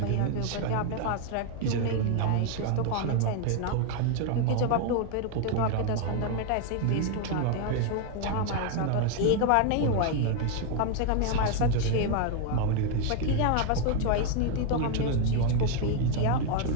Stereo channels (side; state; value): both; different; correlation 0.01